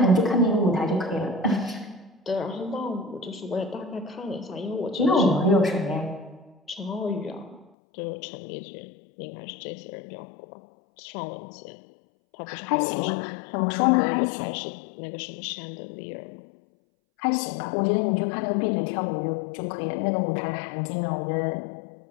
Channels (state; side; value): drops out; right; at 7.7 s